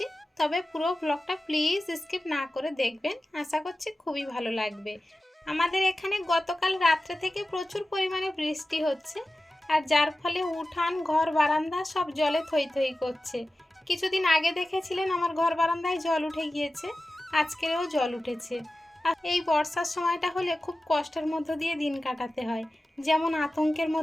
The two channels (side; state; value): both; normal; correlation 0.95